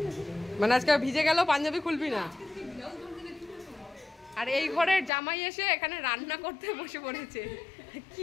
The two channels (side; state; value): right; drops out; at 5.1 s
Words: মানে আজকে ভিজে গেল, পাঞ্জাবি খুলবি না। আর এই ঘরের জামাই এসে এখানে রান্না করতে বসে পড়েছে।